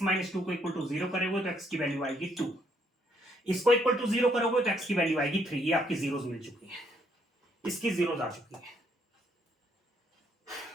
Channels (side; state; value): both; normal; correlation 0.70